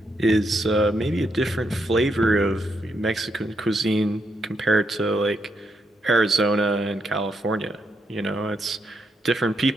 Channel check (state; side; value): normal; both; correlation 0.79